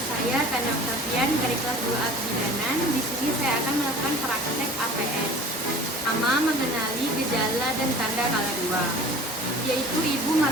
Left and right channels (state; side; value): normal; both; correlation 0.44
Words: Tanda Oktavian dari kelas 2A Kebidanan. Di sini saya akan melakukan praktek APS. Pertama, mengenali gejala dan tanda kala 2, yaitu ibu